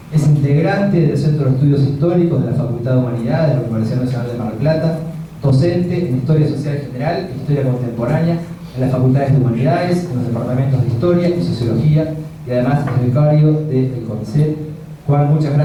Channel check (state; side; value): identical; both; correlation 1.00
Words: es integrante del Centro de Estudios Históricos de la Facultad de Humanidades de la Universidad Nacional de Mar del Plata, docente en Historia Social General e Historia Contemporánea en las Facultades de Humanidades, en los departamentos de Historia y Sociología, y además es becario del CONICET. Juan, muchas